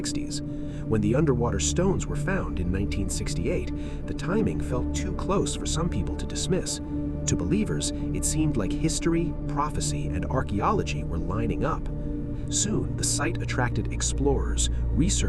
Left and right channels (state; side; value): identical; both; correlation 1.00